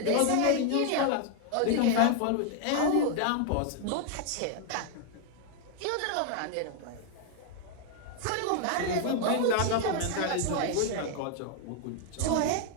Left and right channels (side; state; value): both; different; correlation 0.00